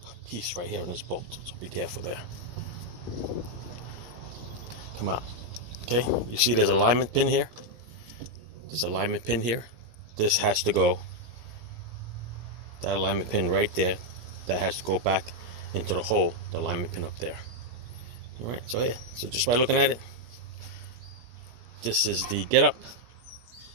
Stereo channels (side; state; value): left; late; 17 ms